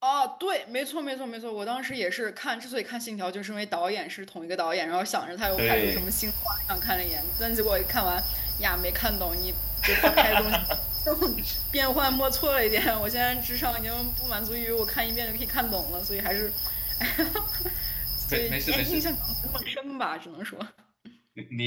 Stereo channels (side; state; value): both; identical; correlation 1.00